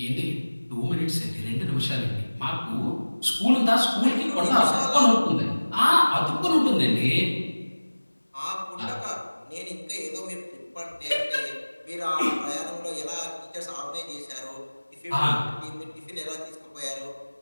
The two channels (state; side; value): inverted; both; correlation -1.00